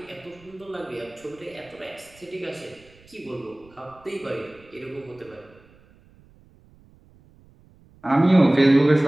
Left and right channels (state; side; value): noise; right; rumble, 28 dB below the sound